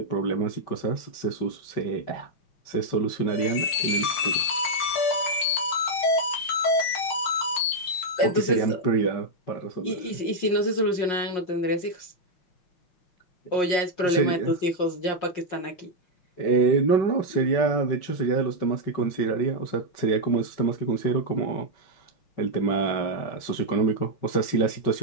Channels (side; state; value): right; late; 5.6 ms